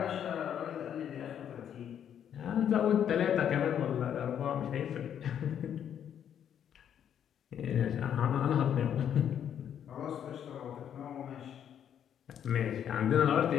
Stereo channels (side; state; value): right; quieter; 9.2 dB